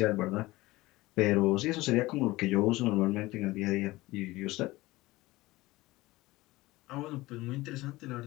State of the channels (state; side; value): quieter; right; 19.5 dB